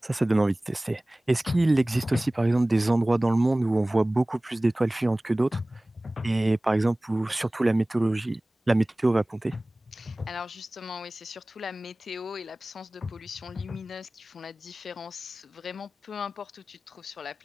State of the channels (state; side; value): normal; both; correlation 0.98